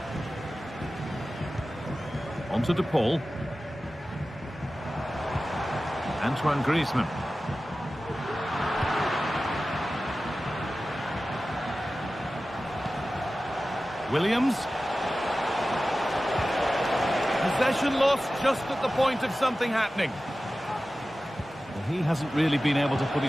On to De Paul. Antoine Griezmann. Williams. Possession lost just at the point of something happening. Well, he hasn't really been able to put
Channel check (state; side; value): normal; both; correlation 0.95